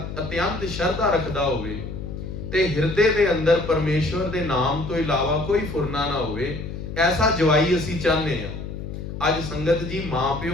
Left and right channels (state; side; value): noise; left; hum, 8 dB below the sound